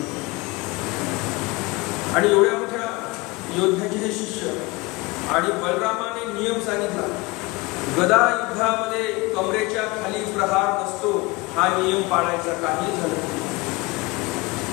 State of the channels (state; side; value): quieter; right; 23.8 dB